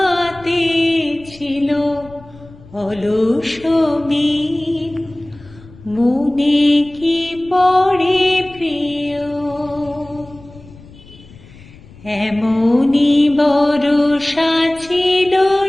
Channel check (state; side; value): noise; left; rumble, 22 dB below the sound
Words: ছিল অলস মিন। মনে কি পড়ে প্রিয়, এমনি বরষা ছিল